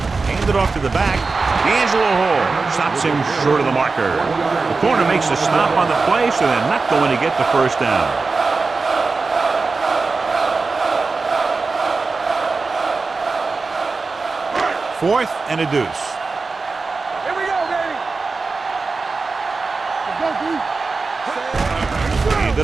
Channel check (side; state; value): left; quieter; 4.1 dB